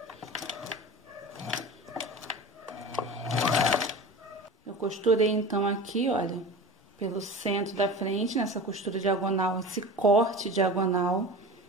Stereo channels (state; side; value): normal; both; correlation 0.33